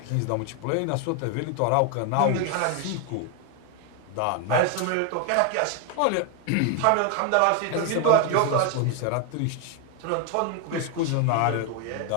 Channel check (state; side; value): different; both; correlation 0.01